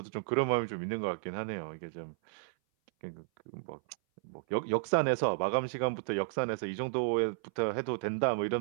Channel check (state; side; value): silent; left; 56 dB below the other